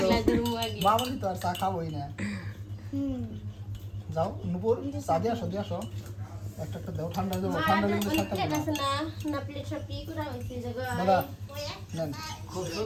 গ্লাস রুম আগে বাবা তো আর চা খাবোই না। যাও নুপুর চা দিয়ে আসো একটা দাও, ঠান্ডা যাবো, ঠান্ডা লেগে সাথে প্লেট আছে না, না প্লেট সব কি করা হইছে জায়গা দাদা নেন। খুব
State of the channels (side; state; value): both; identical; correlation 1.00